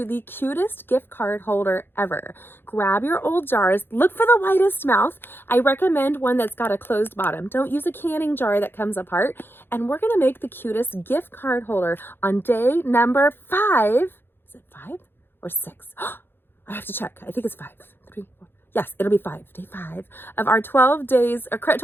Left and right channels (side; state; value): right; late; 0.10 ms